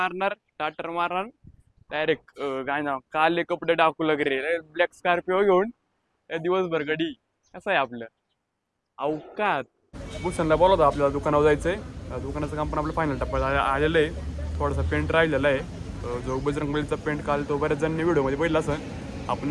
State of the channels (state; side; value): identical; both; correlation 1.00